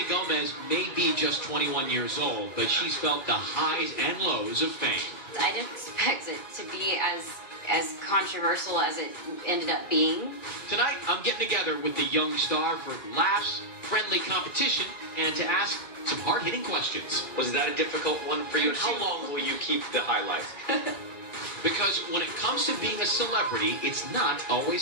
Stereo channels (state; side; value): late; right; 2.4 ms